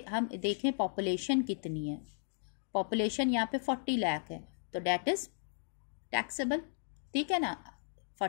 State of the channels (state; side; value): silent; right; digital silence